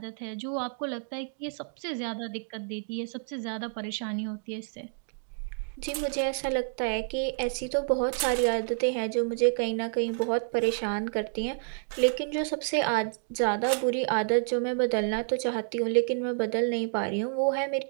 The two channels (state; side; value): silent; left; digital silence